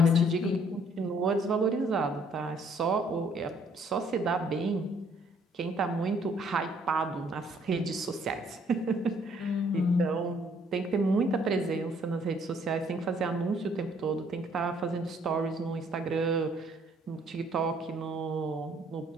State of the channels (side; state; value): both; normal; correlation 0.64